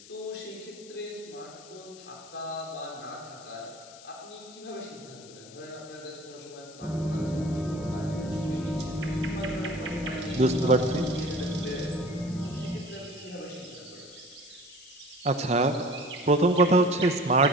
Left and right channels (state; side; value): noise; left; hiss, 19 dB below the sound